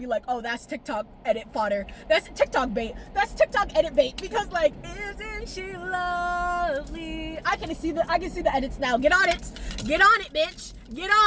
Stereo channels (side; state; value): both; identical; correlation 1.00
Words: like, oh, that's TikTok edit fodder. That's TikTok bait. That's TikTok edit bait. Because, like, isn't she lovely? I can see the edits now. Get on it, bitch. Get